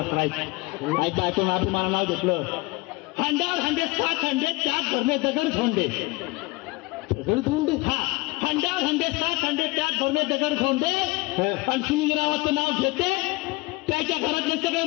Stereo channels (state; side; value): quieter; right; 23.2 dB